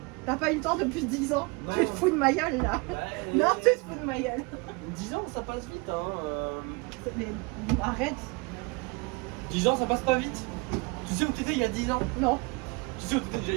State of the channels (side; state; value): left; quieter; 28.0 dB